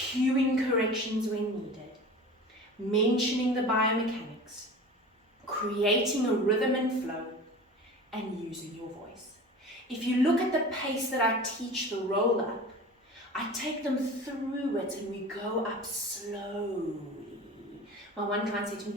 corrections when needed, mentioning the biomechanics, creating a rhythm and flow, and using your voice. If you look at the pace that I teach the roll up, I take them through it and we go up slowly. My one client said to me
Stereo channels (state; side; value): normal; both; correlation 0.37